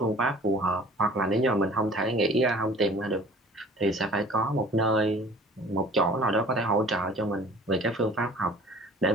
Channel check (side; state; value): both; normal; correlation 0.47